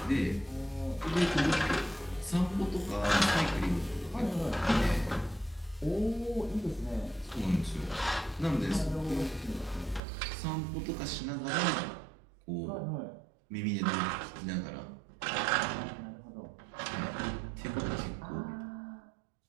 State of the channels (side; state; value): left; drops out; at 10.0 s